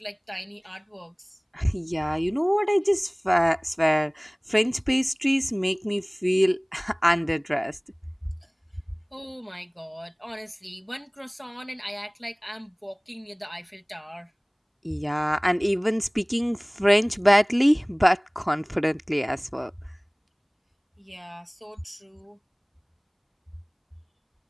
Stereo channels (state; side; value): identical; both; correlation 1.00